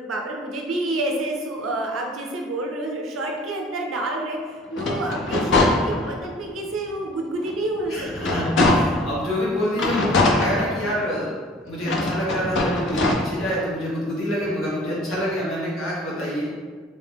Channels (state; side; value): normal; both; correlation 0.48